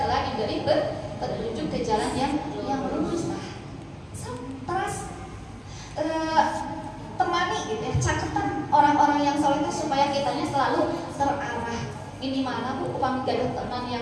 telah diberi petunjuk ke jalan yang lurus. Terus temani gitu ya, caketan orang-orang yang soleh supaya kitanya selalu terarah. Ini mana bu, upami gaduh teman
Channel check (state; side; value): identical; both; correlation 1.00